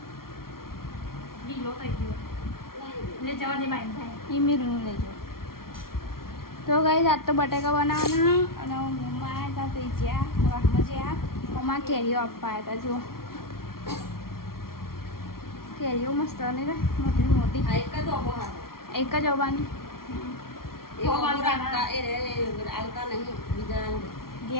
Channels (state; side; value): late; right; 0.93 ms